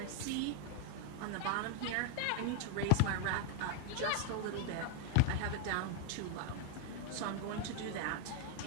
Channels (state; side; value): different; both; correlation 0.00